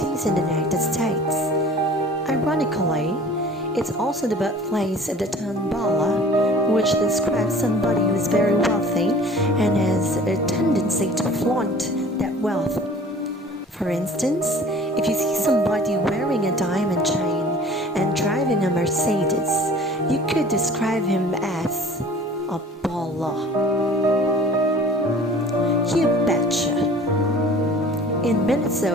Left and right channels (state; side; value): normal; both; correlation 0.46